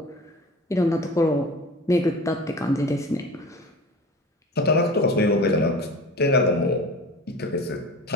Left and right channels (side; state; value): both; normal; correlation 0.36